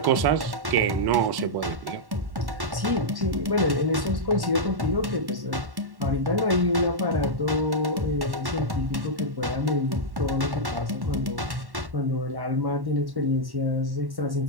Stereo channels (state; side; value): late; left; 1.1 ms